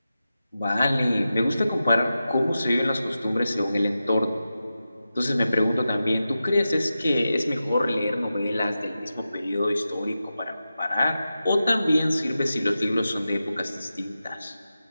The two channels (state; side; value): inverted; both; correlation -0.92